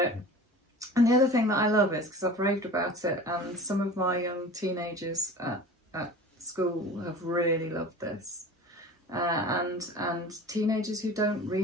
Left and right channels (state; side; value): normal; both; correlation 0.38